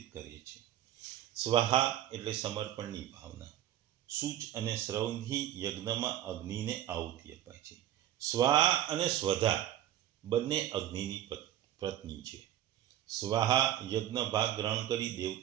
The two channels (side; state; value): left; quieter; 12.2 dB